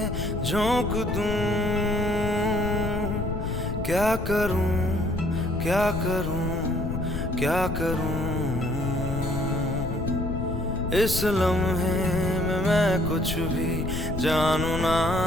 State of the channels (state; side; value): noise; left; rumble, 3 dB below the sound